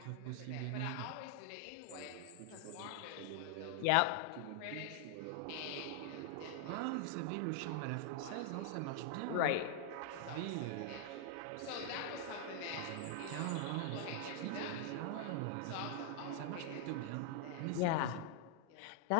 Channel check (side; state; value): both; different; correlation 0.00